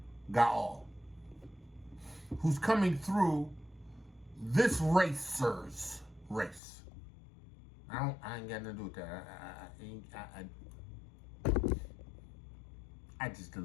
Gaal, who's coming through this racer's race. I ain't got nothing to do with that. I just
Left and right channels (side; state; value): right; drops out; at 6.6 s